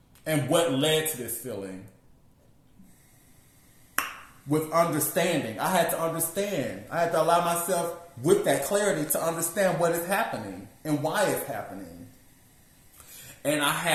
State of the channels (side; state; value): both; identical; correlation 1.00